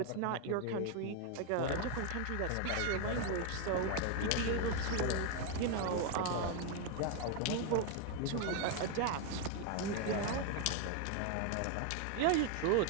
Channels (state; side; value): different; both; correlation 0.01